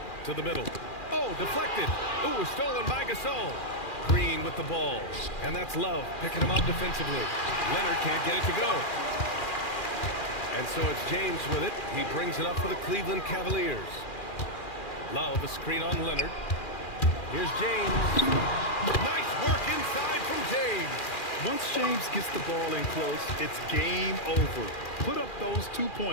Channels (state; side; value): late; right; 2.4 ms